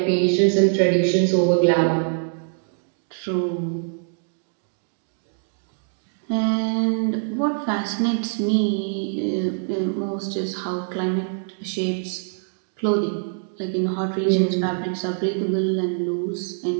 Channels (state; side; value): silent; left; digital silence